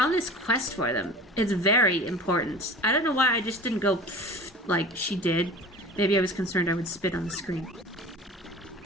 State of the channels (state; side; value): normal; both; correlation 0.39